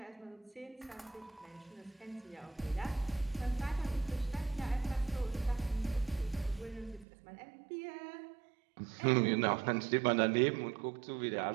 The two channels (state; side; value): drops out; left; at 7.1 s